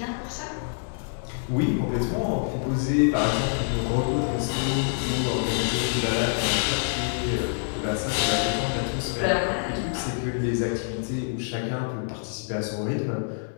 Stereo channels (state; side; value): silent; right; digital silence